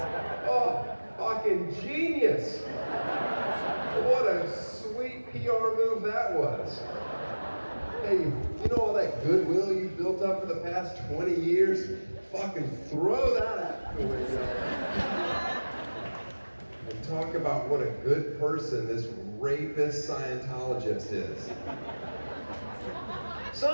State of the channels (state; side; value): inverted; both; correlation -1.00